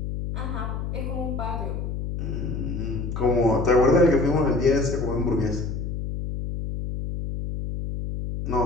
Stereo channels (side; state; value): left; noise; hum, 4 dB below the sound